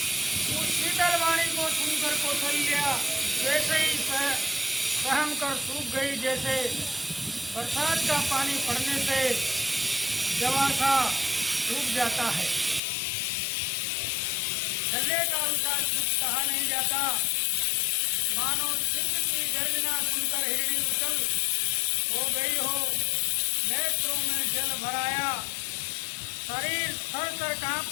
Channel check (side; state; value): right; drops out; at 12.8 s